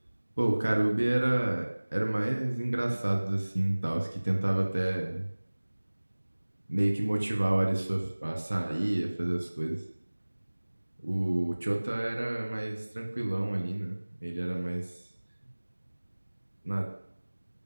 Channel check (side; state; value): both; inverted; correlation -1.00